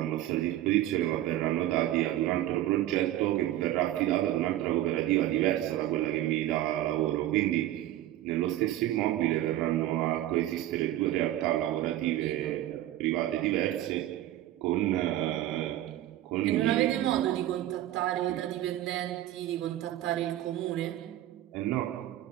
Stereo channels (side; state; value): left; quieter; 13.9 dB